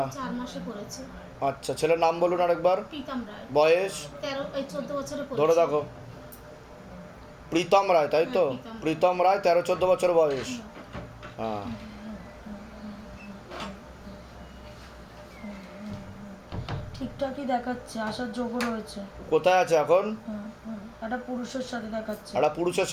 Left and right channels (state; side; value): identical; both; correlation 1.00